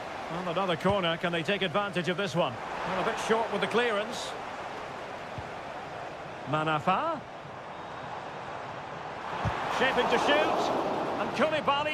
Well, another corner. Can they take advantage of this one? Well, a bit short with the clearance. Manafa. Shaping to shoot. And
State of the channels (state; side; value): identical; both; correlation 1.00